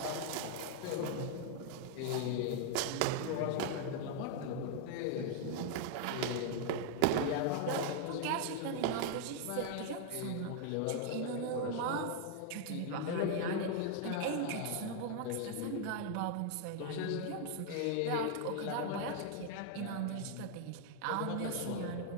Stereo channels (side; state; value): both; different; correlation 0.00